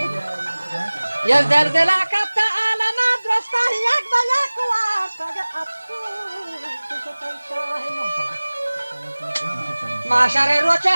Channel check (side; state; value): both; inverted; correlation -1.00